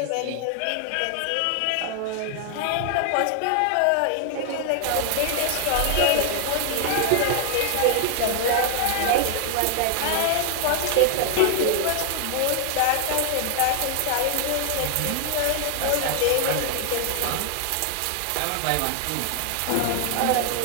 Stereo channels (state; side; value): different; both; correlation 0.00